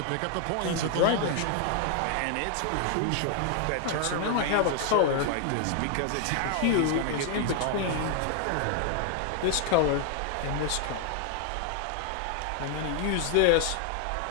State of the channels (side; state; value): both; different; correlation 0.00